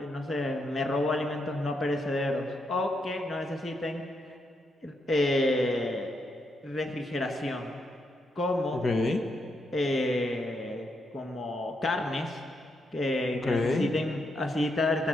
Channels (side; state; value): both; normal; correlation 0.80